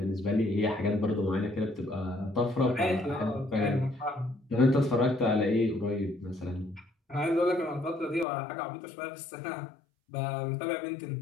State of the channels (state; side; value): drops out; right; at 8.2 s